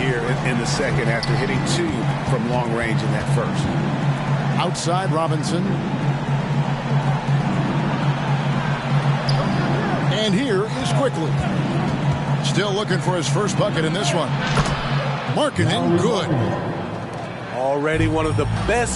in the second after hitting 2 from long range in that first. Outside Robinson. And here is Quickly. Still looking for his first bucket in this one. Markkanen, good. Already one of the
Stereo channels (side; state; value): both; identical; correlation 1.00